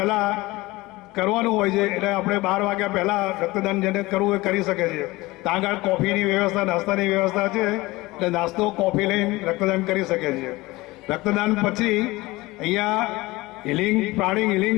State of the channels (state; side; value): quieter; right; 20.6 dB